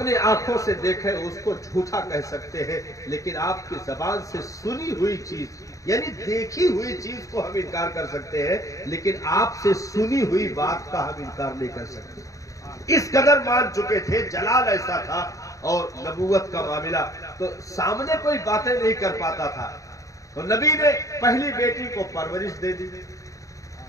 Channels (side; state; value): right; late; 0.16 ms